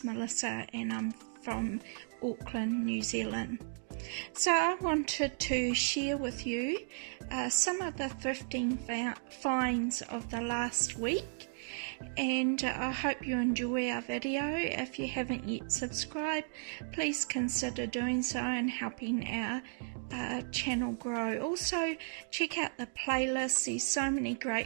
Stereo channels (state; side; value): silent; left; digital silence